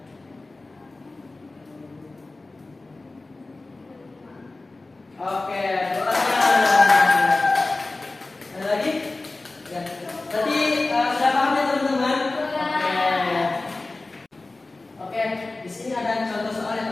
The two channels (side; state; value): right; quieter; 3.2 dB